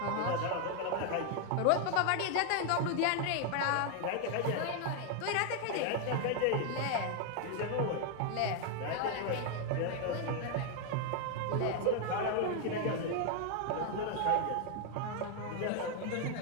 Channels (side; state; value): both; different; correlation 0.01